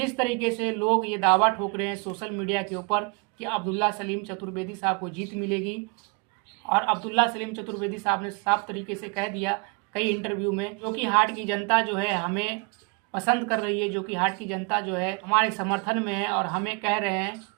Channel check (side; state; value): left; quieter; 29.6 dB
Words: तरीके से लोग ये दावा ठोक रहे हैं सोशल मीडिया के ऊपर कि अब्दुल्ला सलीम चतुर्वेदी साहब को जीत मिलेगी, और अब्दुल्ला सलीम चतुर्वेदी साहब ने साफ तरीके से कह दिया कई इंटरव्यू में, जोकीहाट की जनता जो है हमें पसंद कर रही है, जोकीहाट की जनता जो है हमारे समर्थन में है और हमें कह रहे हैं